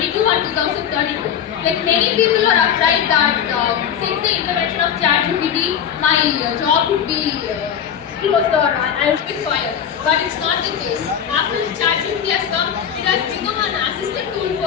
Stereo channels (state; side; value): quieter; right; 8.7 dB